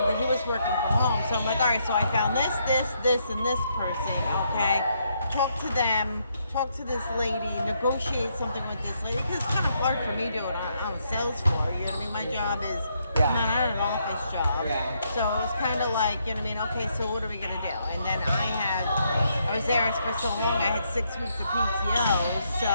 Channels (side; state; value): both; inverted; correlation -0.75